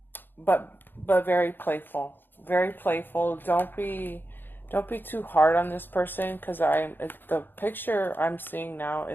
very playful, very playful. Don't be too hard on this person, because the picture I'm seeing now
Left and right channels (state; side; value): late; right; 0.096 ms